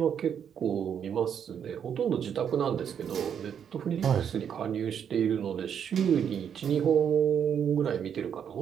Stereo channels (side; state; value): left; quieter; 8.2 dB